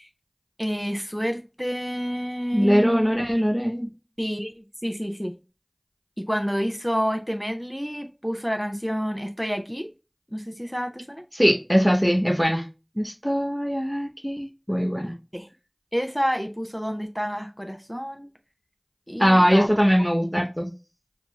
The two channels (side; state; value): both; identical; correlation 1.00